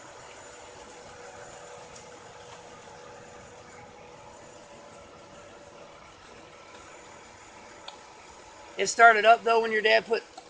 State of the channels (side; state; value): both; identical; correlation 1.00